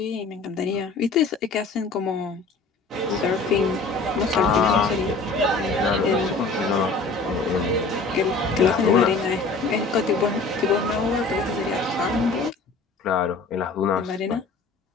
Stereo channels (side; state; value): right; quieter; 3.8 dB